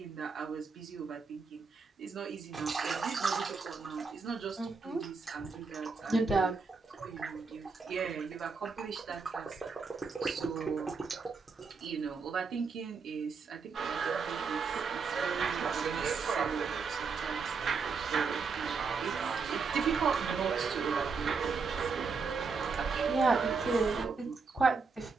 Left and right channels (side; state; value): left; quieter; 4.9 dB